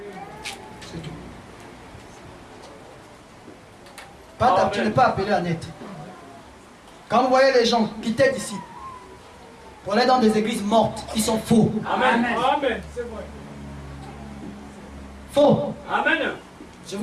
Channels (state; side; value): identical; both; correlation 1.00